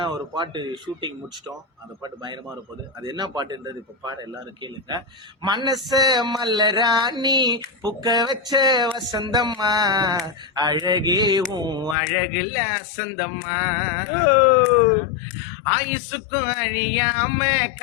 ஒரு பாட்டு ஷூட்டிங் முடிச்சிட்டோம். அந்த பாட்டு பயங்கரமா இருப்போது. அது என்ன பாட்டுன்றது இப்போ பாட எல்லாரும் கேளுங்க. மனச மல்லராணி புக்க வச்ச வசந்தம்மா, அழகேவும் அழகுல அசந்தம்மா, ஆயுசுக்கும் அழியாம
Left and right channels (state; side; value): drops out; right; at 12.0 s